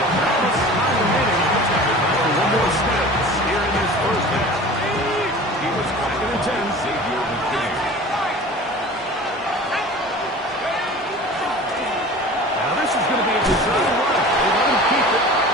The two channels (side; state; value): both; normal; correlation 0.40